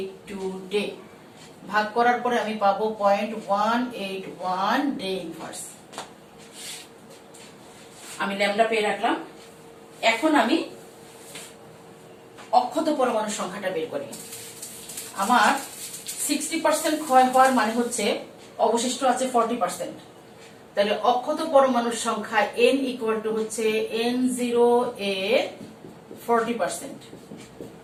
day ভাগ করার পরে আমি পাবো 0.181 ডে ইনভার্স। আমি ল্যামডা পেয়ে রাখলাম। এখন আমি অক্ষত পরমাণুর সংখ্যাটা বের করি। আমার 60% ক্ষয় হওয়ার মানে হচ্ছে অবশিষ্ট আছে 40%, তাহলে অক্ষত পরমাণুর সংখ্যা n ইকুয়াল টু হচ্ছে n0 এর 40%।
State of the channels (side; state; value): both; identical; correlation 1.00